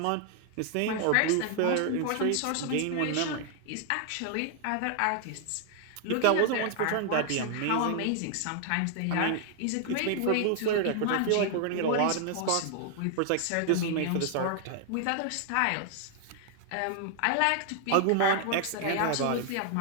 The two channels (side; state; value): both; different; correlation 0.00